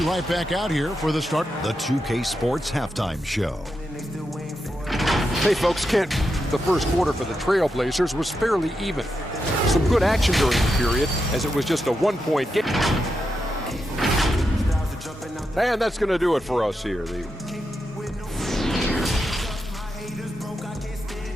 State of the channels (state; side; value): normal; both; correlation 0.86